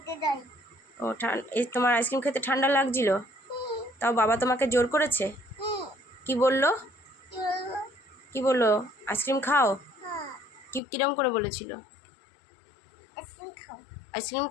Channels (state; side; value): drops out; right; at 10.8 s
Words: তাই। ও এই তোমার আইসক্রিম খেতে ঠান্ডা লাগছিল, তাও বাবা তোমাকে জোর করেছে? কি বললো? কি বললো? আইসক্রিম খাও? কিরম করে বলেছিল? আইসক্রিম